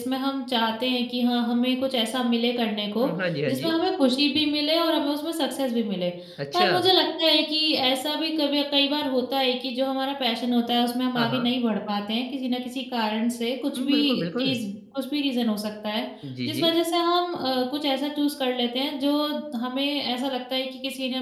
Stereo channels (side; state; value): both; identical; correlation 1.00